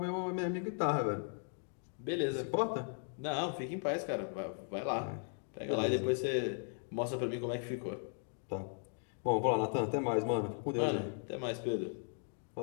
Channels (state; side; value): silent; right; 53 dB below the other